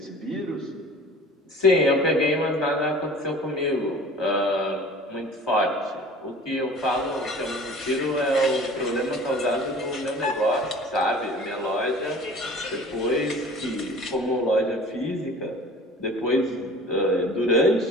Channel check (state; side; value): normal; both; correlation 0.44